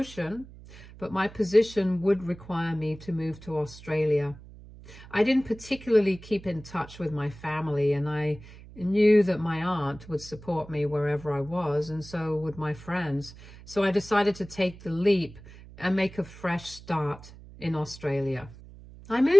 but my position would require me to move to Australia. I didn't particularly keep in touch with my family, and I knew that my aunt would support me wherever I was, and so would my friends. So I decided to take the leap and make a fresh start in Australia. I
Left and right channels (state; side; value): noise; right; hum, 18 dB below the sound